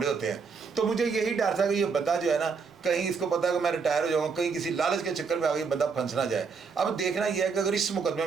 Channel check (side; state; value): left; quieter; 5.3 dB